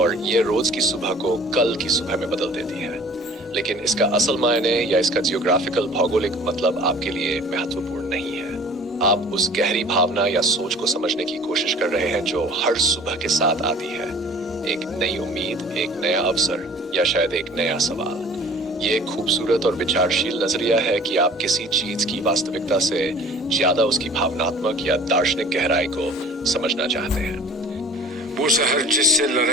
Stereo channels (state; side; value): normal; both; correlation 0.48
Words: یہ روز کی صبح کو کل کی صبح میں بدل دیتی ہے۔ لیکن اس کا اصل معنی یا اس کا جیوگرافیکل بھوگولک مطلب آپ کے لیے مہتوپورن نہیں ہے۔ آپ اس گہری بھاونا یا سوچ کو سمجھنے کی کوشش کر رہے ہیں جو ہر صبح کے ساتھ آتی ہے، ایک نئی امید، ایک نیا اوسر، یا شاید ایک نیا سوال۔ یہ ایک خوبصورت اور وچارشیل نظریہ ہے کہ آپ کسی چیز کی واستوکتا سے زیادہ اس کی بھاوناتمک یا دارشنک گہرائی کو سمجھنا چاہتے ہیں۔ وہ سحر جس سے